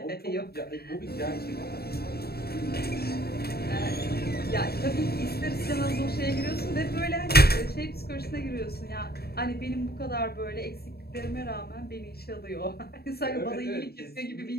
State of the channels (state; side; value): late; right; 0.46 ms